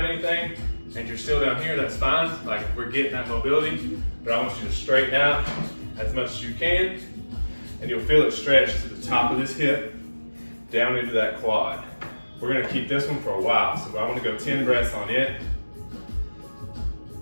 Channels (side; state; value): both; inverted; correlation -1.00